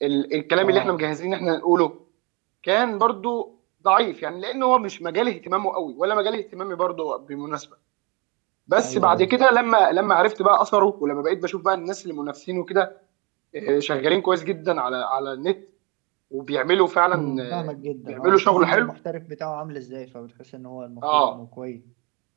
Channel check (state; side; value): quieter; left; 29.3 dB